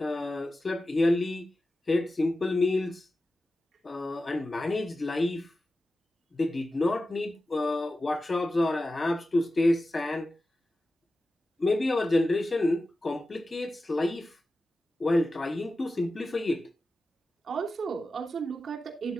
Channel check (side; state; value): both; normal; correlation 0.93